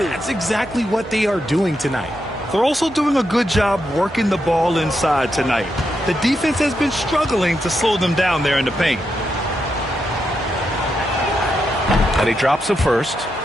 exactly what they are doing tonight. They're also doing a good job working the ball inside tonight. The defense has been struggling to slow them down there in the paint. And he drops the first.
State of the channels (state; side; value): normal; both; correlation 0.84